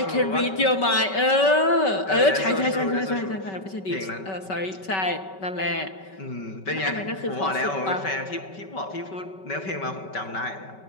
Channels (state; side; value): late; right; 5.2 ms